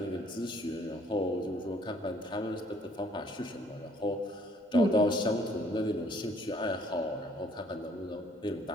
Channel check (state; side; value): normal; both; correlation 0.61